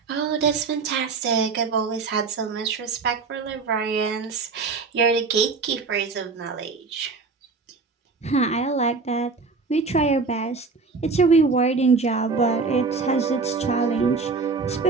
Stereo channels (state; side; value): quieter; left; 4.4 dB